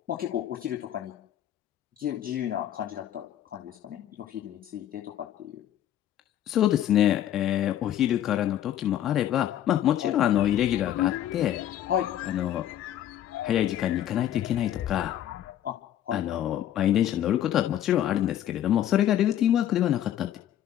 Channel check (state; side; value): quieter; right; 11.5 dB